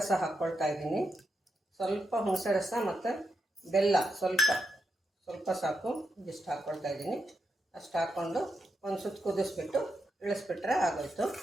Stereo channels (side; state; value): both; normal; correlation 0.85